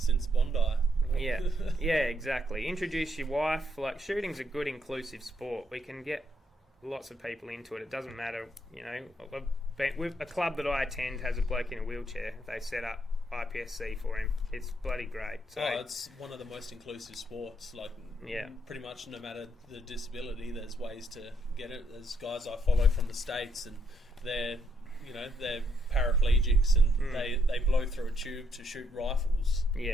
Bondi. Yeah, exactly. Introduce your wife. Like, shooting's a good inclusive sport. We can get lots of people into it. It doesn't matter, a club that I attend has a bloke in a wheelchair. They set up IPSC for him. It's bloody great. So, it's one of the most inclusive sports. Like, pretty much no matter the disability, there's ways to get it. There's guys I follow from the States, and they're paraplegics, and they blow through a tube to shoot rifles.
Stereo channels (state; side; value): normal; both; correlation 0.74